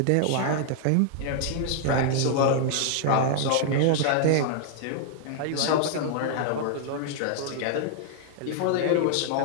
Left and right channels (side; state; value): both; different; correlation -0.01